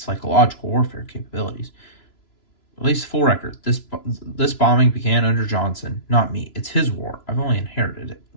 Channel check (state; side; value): late; right; 2.9 ms